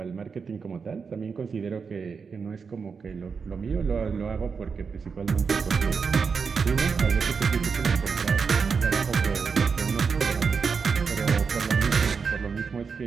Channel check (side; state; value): left; quieter; 5.5 dB